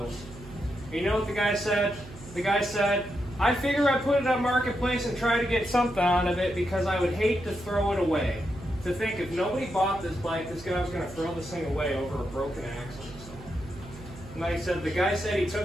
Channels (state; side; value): noise; right; hum, 16 dB below the sound